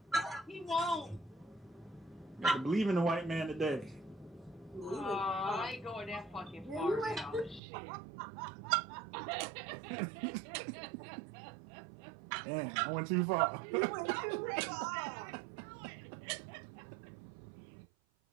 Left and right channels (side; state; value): left; drops out; at 7.6 s